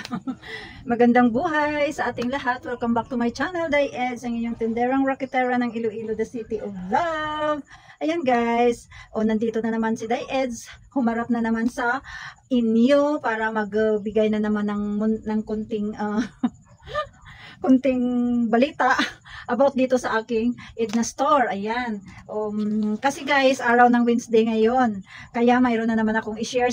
Magandang buhay sa ating lahat. Welcome back to my channel, Diez, ang inyong tinderang rocketera ng Iloilo, the city of love. Ayan guys, nandito na naman si Diez. Humarap na naman sa inyo para magbigay na naman ng kunting kunting balita about dito sa aking Edna store. Ayan. Kasi guys, araw ng Wednesday ngayon. Kaya mayroon na naman akong i-share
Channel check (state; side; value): identical; both; correlation 1.00